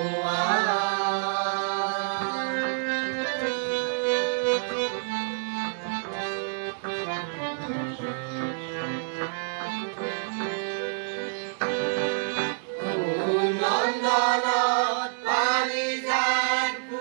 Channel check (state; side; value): silent; left; digital silence